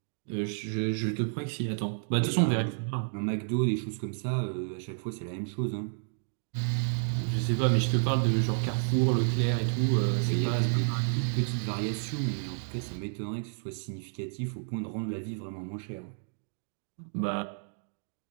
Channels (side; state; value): left; silent; digital silence